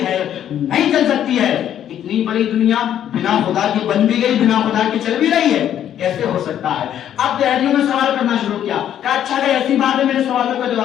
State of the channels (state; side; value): quieter; right; 10.4 dB